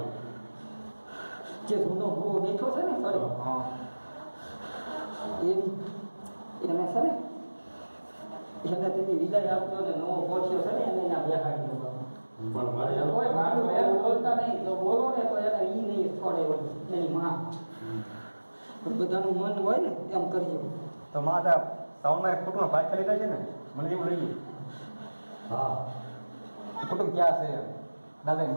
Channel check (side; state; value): both; inverted; correlation -1.00